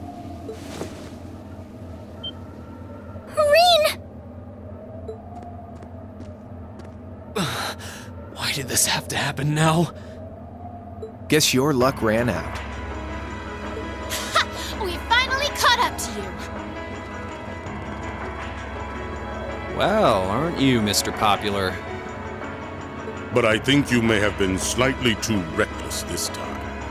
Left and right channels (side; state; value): both; identical; correlation 1.00